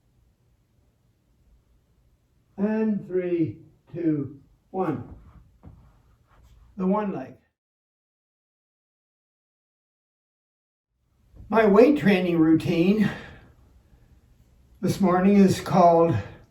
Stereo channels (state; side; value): identical; both; correlation 1.00